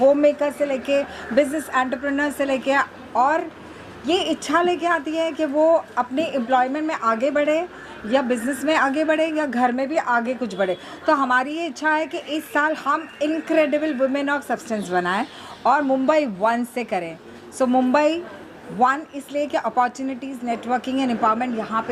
होम मेकर से लेके बिजनेस एंटरप्रेन्योर से लेके, और ये इच्छा लेके आती है कि वो अपने एम्प्लॉयमेंट में आगे बढ़े या बिज़नेस में आगे बढ़े या घर में भी आगे कुछ बढ़े। तो हमारी ये इच्छा है कि इस साल हम इनक्रेडिबल वुमेन ऑफ सब्सटेंस बनाएं और मुंबई 1 से करें। सो मुंबई 1 इसलिए कि अपॉर्चुनिटीज़, नेटवर्किंग एंड एम्पावरमेंट यहाँ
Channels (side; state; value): both; identical; correlation 1.00